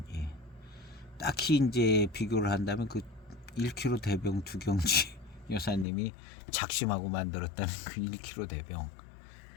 딱히 이제 비교를 한다면 그 1kg 대병 두경지 여사님이 작심하고 만들었다는 그 1kg 대병,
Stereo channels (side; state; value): right; drops out; at 5.9 s